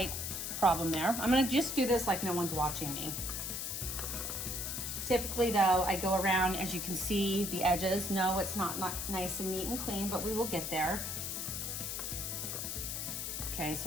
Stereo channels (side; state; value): left; noise; hiss, 3 dB below the sound